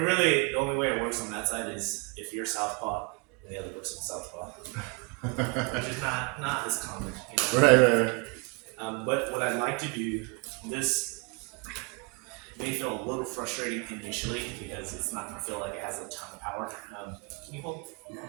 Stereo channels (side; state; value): left; quieter; 30.5 dB